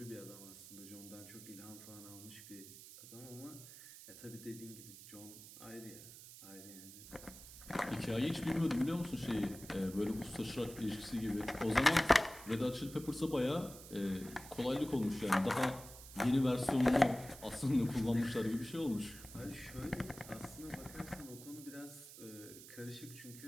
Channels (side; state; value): right; noise; hiss, 15 dB below the sound